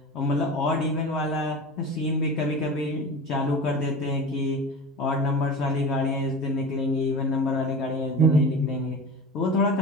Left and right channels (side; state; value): both; normal; correlation 0.32